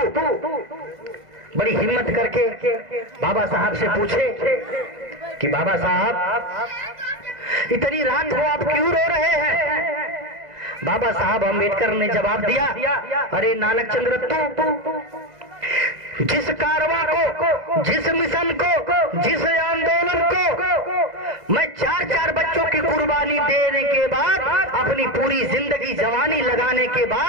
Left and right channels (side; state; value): left; late; 1.5 ms